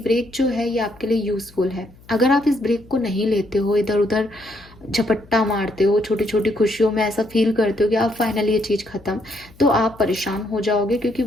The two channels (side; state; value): left; noise; hum, 25 dB below the sound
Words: जो है ये आपके लिए यूजफुल है। अगर आप इस ब्रेक को नहीं लेते हो, इधर उधर झपट्टा मारते हो, छोटी छोटी खुशियों में ऐसा फील करते हो कि आप फाइनली ये चीज़ ख़त्म, तो आप परेशान हो जाओगे, क्योंकि